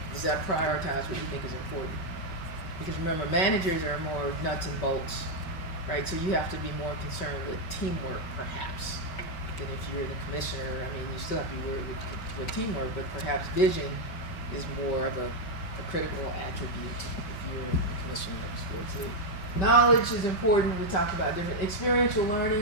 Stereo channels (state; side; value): late; right; 5.2 ms